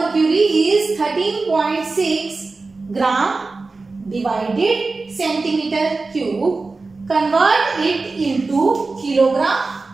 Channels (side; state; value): left; quieter; 3.8 dB